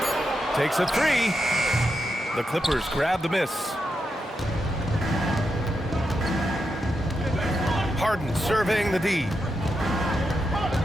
Takes a 3. The Clippers grab the miss. Harden surveying the D.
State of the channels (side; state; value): both; normal; correlation 0.86